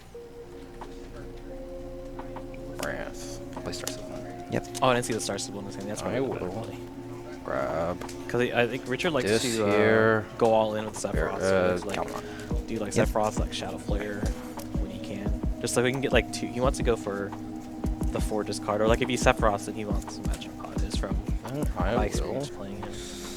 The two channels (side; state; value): both; identical; correlation 1.00